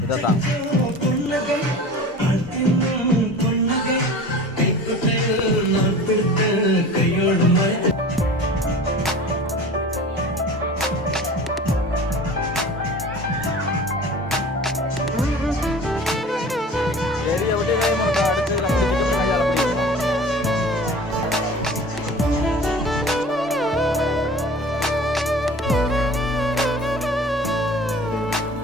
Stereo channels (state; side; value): normal; both; correlation 0.40